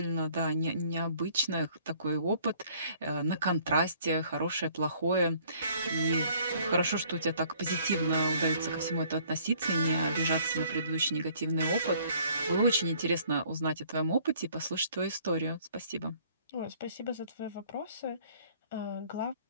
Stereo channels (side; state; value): both; inverted; correlation -0.58